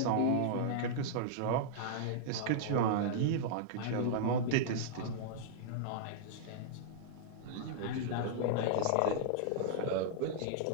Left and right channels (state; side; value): different; both; correlation -0.01